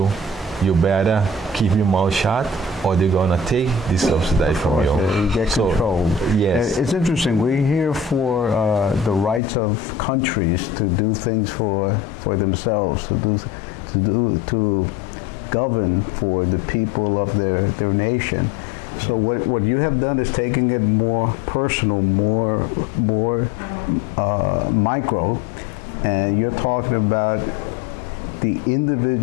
you better keep your mouth shut or they're going to take this subsidy from you. You get control. Yes. It's interesting. We're here for the rights of countries to do things for themselves, to govern for the people of their nation. So what you have done is taking it more personal, more micro, and you're talking about the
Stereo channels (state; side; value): drops out; right; at 9.4 s